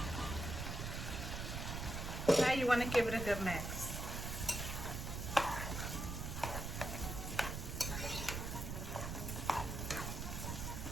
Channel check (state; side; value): noise; right; rumble, 4 dB below the sound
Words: Now you want to give it a good mix.